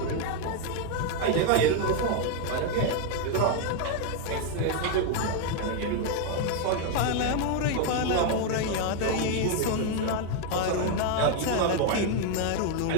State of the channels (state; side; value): different; both; correlation 0.01